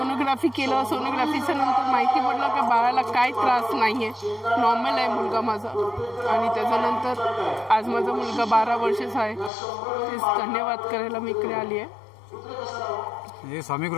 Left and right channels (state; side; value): drops out; right; at 9.5 s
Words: केलं. सोनोग्राफीच्या नंतर माहिती पडलं की बाळाला काय त्रास नाही आहे, नॉर्मल आहे मुलगा माझा. आणि त्याच्यानंतर आज माझा मुलगा 12 वर्षाचा आहे. तेच धन्यवाद करायला मी इकडे आली आहे. हे स्वामी